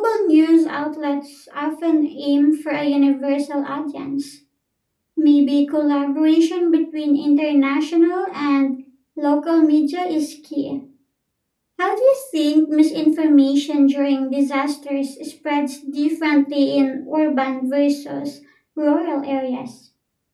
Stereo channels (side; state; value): both; identical; correlation 1.00